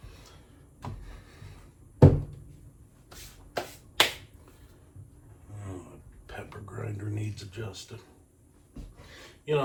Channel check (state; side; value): identical; both; correlation 1.00